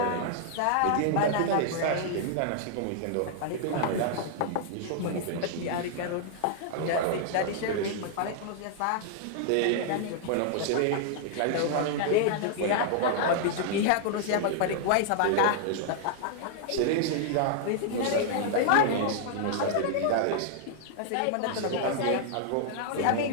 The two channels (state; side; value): different; both; correlation -0.01